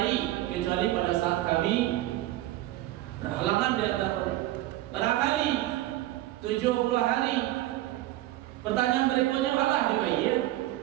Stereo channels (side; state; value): left; quieter; 15.7 dB